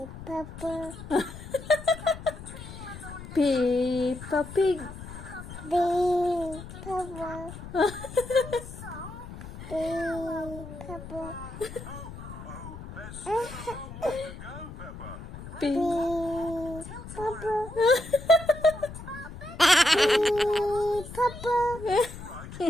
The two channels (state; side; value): noise; left; rumble, 12 dB below the sound